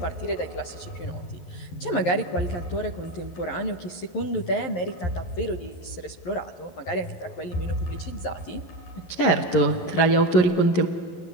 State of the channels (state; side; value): late; right; 11 ms